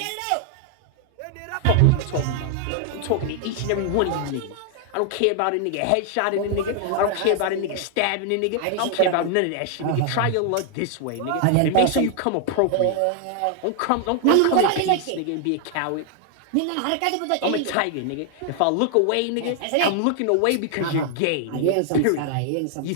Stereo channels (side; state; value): both; different; correlation 0.00